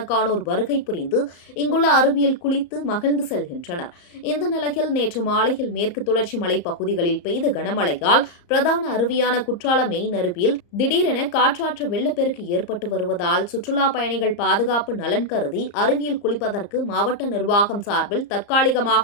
வருகை புரிந்து இங்குள்ள அருவியில் குளித்து மகிழ்ந்து செல்கின்றனர். இந்த நிலையில் நேற்று மாலையில் மேற்கு தொடர்ச்சி மலை பகுதிகளில் பெய்த கனமழையால் பிரதான அருவியான குற்றால மெயின் அருவியில் திடீரென காற்றாற்று வெள்ளப்பெருக்கு ஏற்பட்டு வருவதால் சுற்றுலா பயணிகள் பாதுகாப்பு நலன் கருதி அருவியில் குளிப்பதற்கு மாவட்ட நிர்வாகம் சார்பில்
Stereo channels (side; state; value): right; late; 34 ms